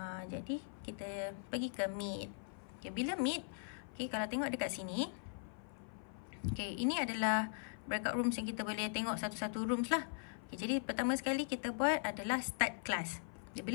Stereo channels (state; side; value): silent; right; 51 dB below the other